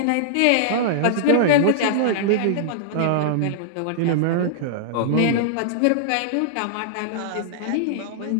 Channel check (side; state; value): both; different; correlation -0.02